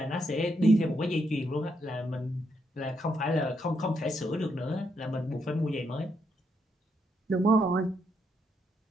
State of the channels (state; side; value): normal; both; correlation 0.78